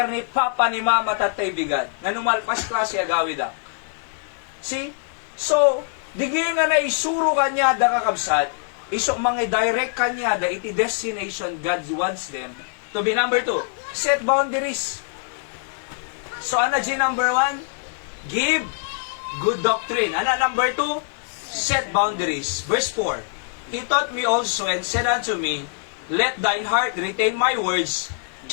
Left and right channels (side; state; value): right; silent; digital silence